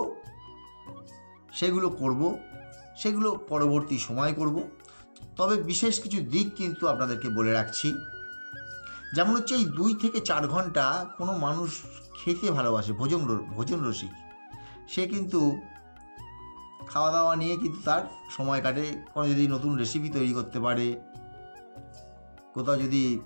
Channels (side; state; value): both; inverted; correlation -1.00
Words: সেগুলো পরবর্তী সময় করব। তবে বিশেষ কিছু দিক কিন্তু আপনাদেরকে বলে রাখছি। যেমন হচ্ছে এই 2 থেকে 4 ঘন্টা কোনো মানুষ খেতে ভালোবাসে, ভোজন রসিক, সে কিন্তু খাওয়া দাওয়া নিয়ে কিন্তু তার সময় কাটে। কোনো যদি নতুন রেসিপি তৈরি করতে পারে, কোথাও যদি